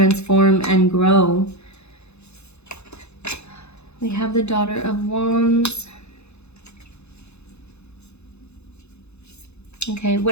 and grow. We have the Daughter of Wands. Okay,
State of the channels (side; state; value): right; late; 0.81 ms